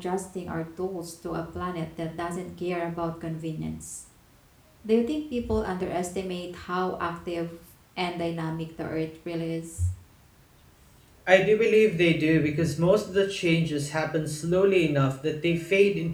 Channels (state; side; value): identical; both; correlation 1.00